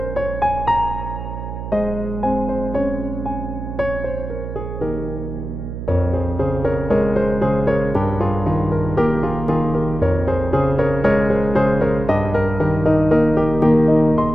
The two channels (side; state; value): right; noise; hum, 7 dB below the sound